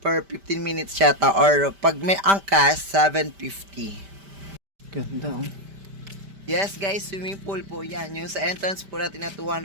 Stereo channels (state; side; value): late; left; 5.1 ms